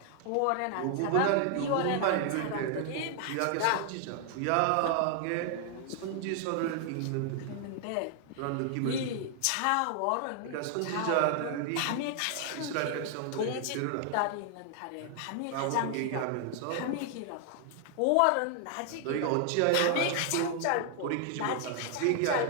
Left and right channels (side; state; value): both; different; correlation 0.00